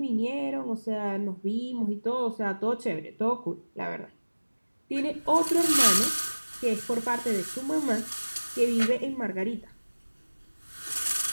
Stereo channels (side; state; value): both; inverted; correlation -1.00